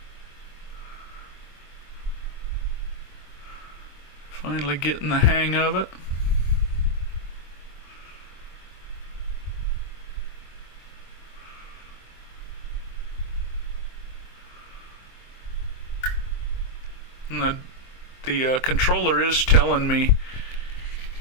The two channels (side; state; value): right; late; 24 ms